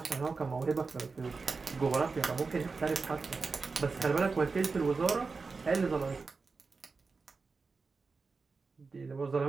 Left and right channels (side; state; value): left; quieter; 4.4 dB